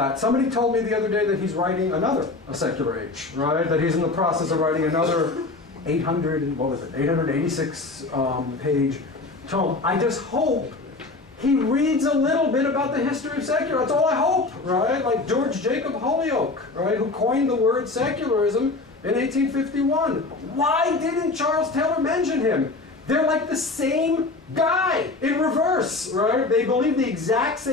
Somebody told me the other day that he's writing a secular age, right? That he's in the process of writing another 886 page tome. I just hope he reads a little bit about the history of secular. That's all I hope, right? Like George Jacob Holyoake, right, who coined the word secularism in 1851. Why didn't Charles Taylor mention him? They're like the same guy in reverse, right? They believe the exact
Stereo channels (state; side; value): quieter; right; 3.4 dB